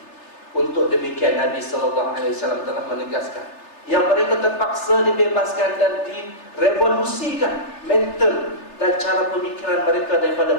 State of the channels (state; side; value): late; right; 3.3 ms